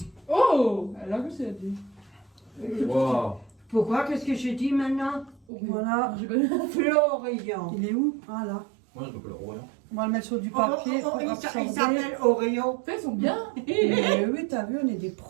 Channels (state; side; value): drops out; left; at 5.4 s